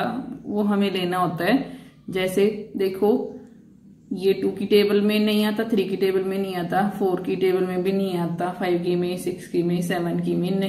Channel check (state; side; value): identical; both; correlation 1.00